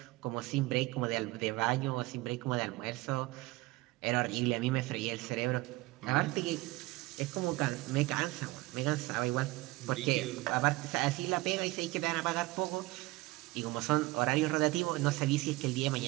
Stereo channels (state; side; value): quieter; left; 20.7 dB